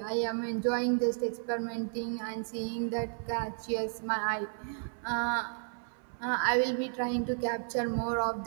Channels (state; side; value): silent; left; 56 dB below the other